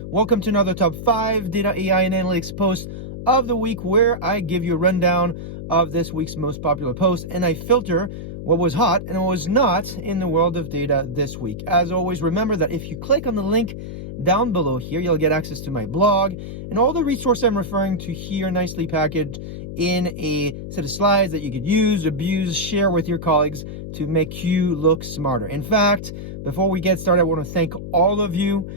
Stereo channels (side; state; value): left; noise; hum, 9 dB below the sound